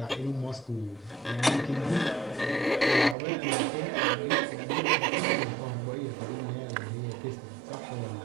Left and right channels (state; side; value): drops out; left; at 3.2 s